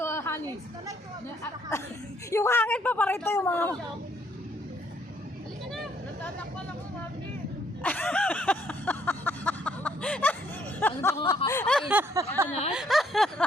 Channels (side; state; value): both; normal; correlation 0.68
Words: honey. Yung hangin pa parito yung mga... Halika na. Natatakpan ako, mami. Ano ba kung makakain? Ano na?